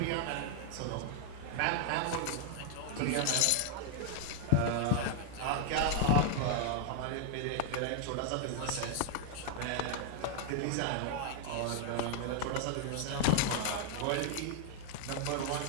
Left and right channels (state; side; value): different; both; correlation 0.00